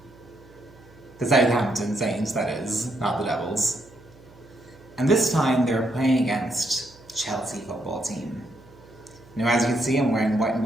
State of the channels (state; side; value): noise; right; hum, 25 dB below the sound